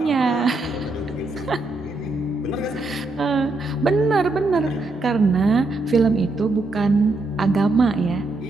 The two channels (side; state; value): left; quieter; 3.1 dB